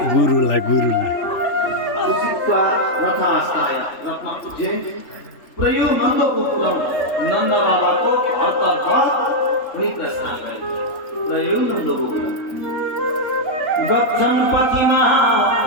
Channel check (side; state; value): right; late; 3.3 ms